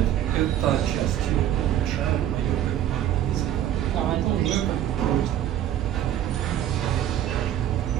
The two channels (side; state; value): left; quieter; 11.5 dB